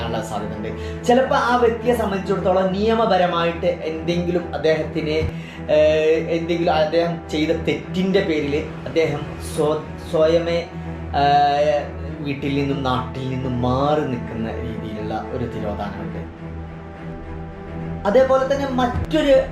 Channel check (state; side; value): identical; both; correlation 1.00